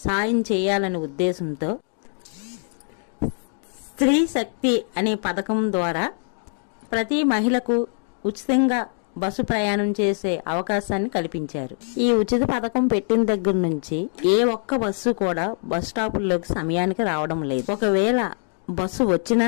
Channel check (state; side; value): silent; right; 63 dB below the other